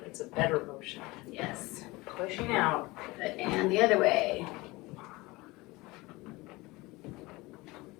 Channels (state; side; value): quieter; right; 22.1 dB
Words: It's a better motion. Yes. Pushing out. And the other way.